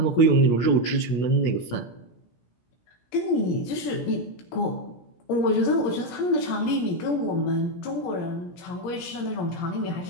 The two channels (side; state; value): right; late; 17 ms